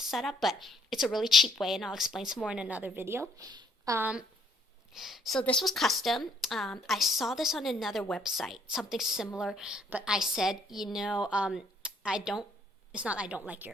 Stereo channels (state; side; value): normal; both; correlation 0.66